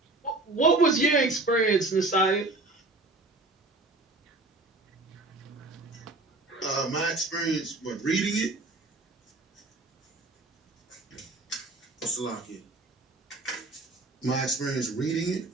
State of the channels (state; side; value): quieter; left; 3.0 dB